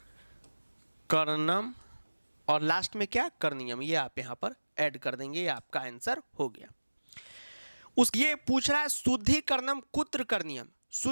और लास्ट में क्या करनियम, ये आप यहां पर ऐड कर देंगे, ये आपका आंसर हो गया। उस ये पूछ रहा है शुद्धिकरणम कुत्र करनियम,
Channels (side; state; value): both; inverted; correlation -1.00